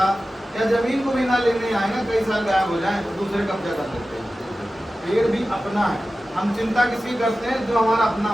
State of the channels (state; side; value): normal; both; correlation 0.95